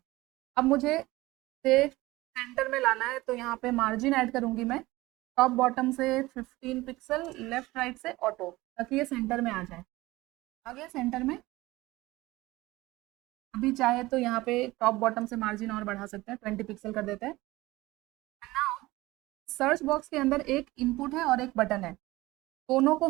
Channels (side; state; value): left; quieter; 19.4 dB